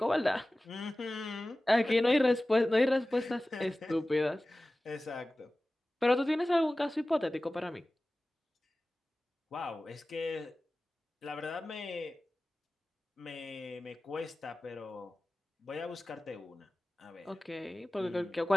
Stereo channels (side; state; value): both; normal; correlation 0.97